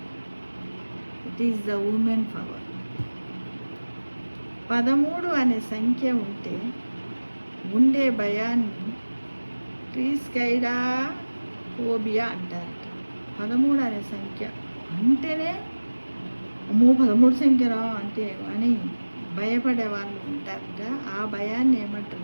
is the women power. 13 అనే సంఖ్య ఉండే భయాన్ని ట్రిస్కైడోఫోబియా అంటారట. 13 అనే సంఖ్య అంటేనే అమ్మో 13 సంఖ్యరా అంటే అని భయపడే వాళ్ళు ఉంటారట. ఆ భయాన్ని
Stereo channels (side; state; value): both; inverted; correlation -1.00